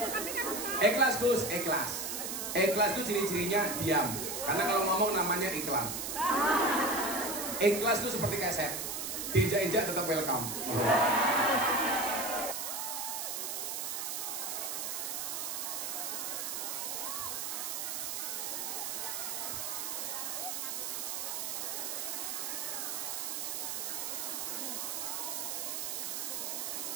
Ikhlas Gus, ikhlas. Ikhlas itu ciri-cirinya diam. Karena kalau ngomong namanya iklan. Ikhlas itu seperti keset. Diinjak-injak tetap welcome.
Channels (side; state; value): right; noise; hiss, 3 dB below the sound